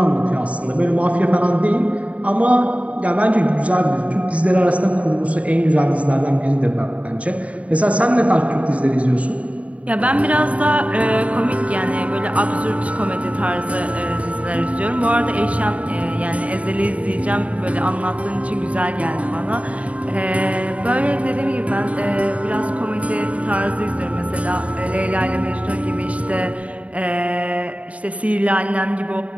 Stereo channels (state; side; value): late; left; 0.066 ms